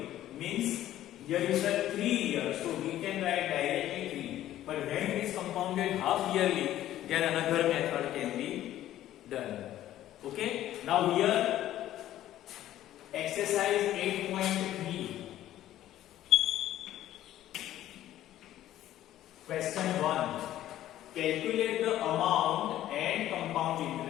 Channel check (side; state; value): right; quieter; 13.2 dB